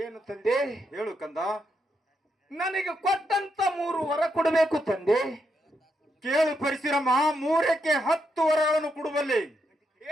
ತಂದೆ? ಹೇಳು ಕಂದ. ನನಗೆ ಕೊಟ್ಟಂತ 3 ವರ ಕೊಡಬೇಕು ತಂದೆ. ಕೇಳು ಪರಶುರಾಮ, 3ಕ್ಕೆ 10 ವರಗಳನ್ನು ಕೊಡುವಲ್ಲಿ.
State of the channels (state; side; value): normal; both; correlation 0.80